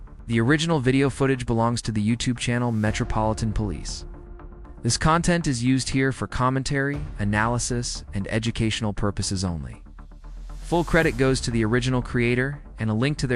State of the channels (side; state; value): both; identical; correlation 1.00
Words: The original video footage belongs to the YouTube channel Metropolitan Police. This content is used here for commentary, analysis, and educational purposes only. Full credit goes to the original creator, and a link to